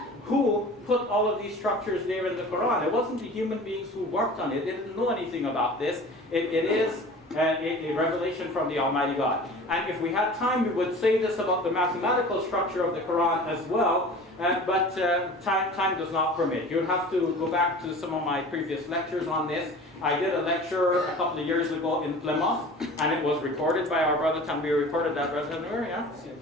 who put all of these structures there in the Quran? It wasn't the human beings who worked on it. They didn't know anything about this. It is a revelation from the Almighty God. And if we had time, we would say this about the mathematical structure of the Quran as well, but time does not permit. You'll have to go back to some of my previous lectures on this. I did a lecture a couple of years ago in Plymouth, and it was recorded by our brother Tanvir. Recorded that, brother Tanvir,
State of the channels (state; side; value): normal; both; correlation 0.40